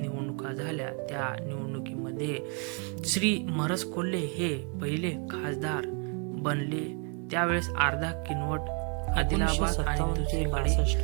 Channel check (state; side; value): quieter; left; 37.6 dB